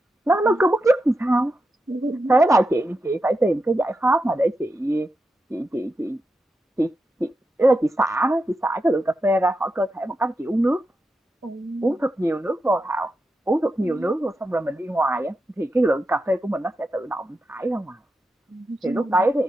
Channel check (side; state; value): both; normal; correlation 0.88